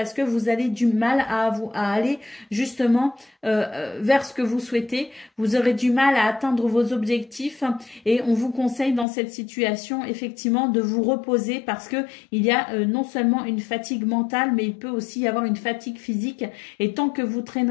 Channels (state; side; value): drops out; right; at 9.1 s